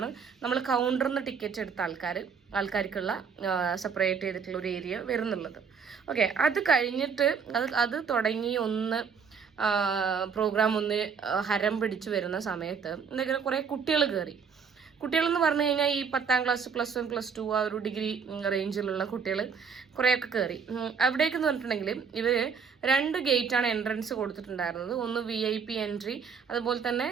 നമ്മൾ കൗണ്ടറിൽ നിന്ന് ടിക്കറ്റ് എടുത്ത ആൾക്കാർക്കുള്ള സെപ്പറേറ്റ് ചെയ്തിട്ടുള്ള ഒരു ഏരിയ വരുന്നുള്ളത്. ഓക്കെ, അത് കഴിഞ്ഞിട്ട് അത് തുടങ്ങി പ്രോഗ്രാം ഒന്ന് ഹരം പിടിച്ചു വരുന്ന സമയത്ത് എന്തെങ്കിലും കുറേ കുട്ടികളെന്ന് പറഞ്ഞു കഴിഞ്ഞാൽ ഈ 10ാം ക്ലാസ് +1 +2 ആ ഒരു ഡിഗ്രി റേഞ്ചിലുള്ള കുട്ടികൾ കുറേയൊക്കെ കയറി. അവിടേക്കെന്ന് പറഞ്ഞിട്ടുണ്ടെങ്കിൽ ഇവർ 2 ഗേറ്റാണ് എൻട്രൻസ് കൊടുത്തിട്ടുണ്ടായിരുന്നത്. ഒന്ന് VIP എൻട്രി, അതുപോലെ തന്നെ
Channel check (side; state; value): left; quieter; 6.2 dB